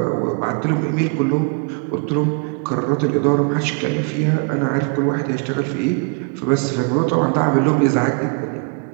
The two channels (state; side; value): quieter; left; 33.5 dB